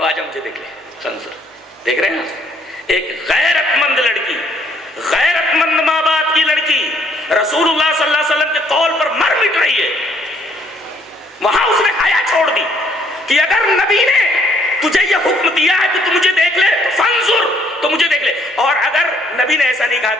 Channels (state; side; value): normal; both; correlation 0.66